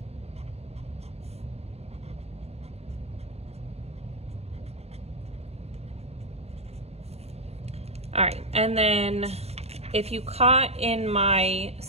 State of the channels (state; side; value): late; left; 0.30 ms